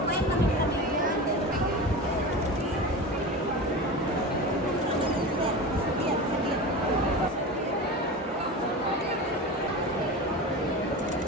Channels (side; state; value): both; normal; correlation 0.28